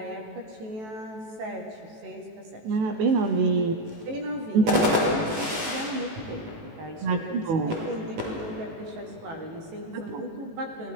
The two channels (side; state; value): left; late; 18 ms